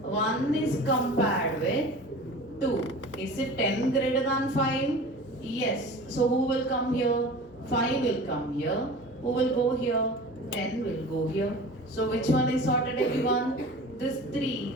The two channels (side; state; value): both; normal; correlation 0.38